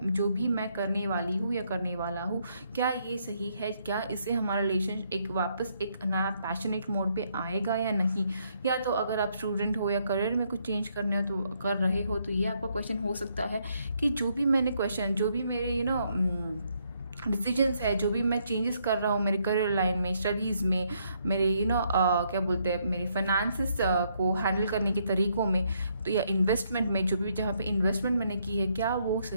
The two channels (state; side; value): inverted; both; correlation -0.73